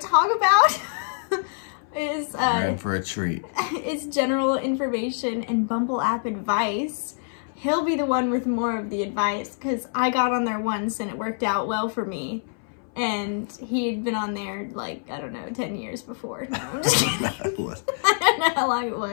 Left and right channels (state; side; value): silent; right; 61 dB below the other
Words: about is You're in for a treat. Is general information and Bumble app advice. He'll be the one with more of the advice because I got on there once and it worked out well for me. And he had been on there like, I don't know, 10 years before. No, I'm just kidding. I don't know how long it